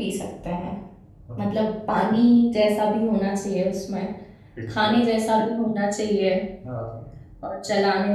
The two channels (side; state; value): both; identical; correlation 1.00